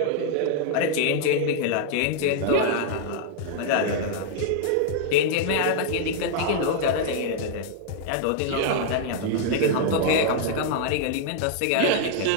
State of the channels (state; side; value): different; both; correlation 0.00